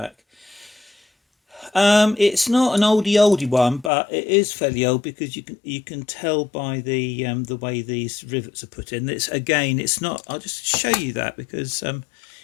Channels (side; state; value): right; drops out; at 3.9 s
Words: It's not an oldie one, but it is fairly old because you can tell by the way these rivets are put in. It's not. I'll just show you that because